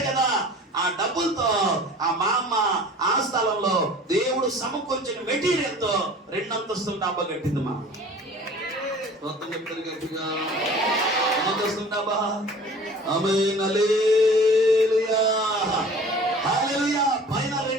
కదా. ఆ డబ్బులతో ఆ మా అమ్మ ఆ స్థలంలో దేవుడు సమకూర్చిన మెటీరియల్ తో 2 అంతస్తుల డాబా కట్టింది. మా మొత్తం చెప్తారు గట్టిగా, అంతస్తుల డాబా. ఆమేన్, హల్లెలూయా, హల్లెలూయా. పైన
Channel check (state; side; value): normal; both; correlation 0.45